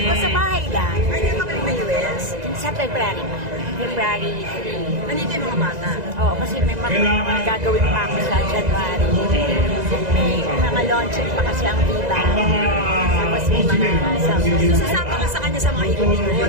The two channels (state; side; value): late; left; 2.0 ms